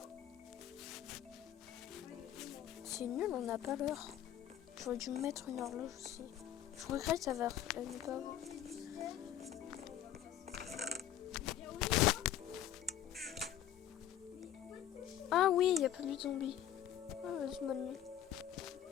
C'est nul, on n'a pas l'heure. J'aurais dû me mettre une horloge aussi. Je regrette ça va ne pas avoir. Ah oui, il n'y a plus de zombies. Ah, vas-y, bonne nuit.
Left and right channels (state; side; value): quieter; right; 11.0 dB